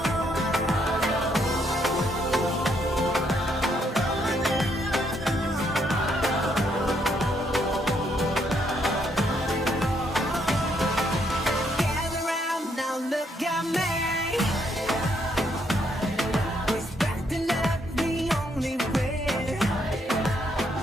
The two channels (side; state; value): both; normal; correlation 0.73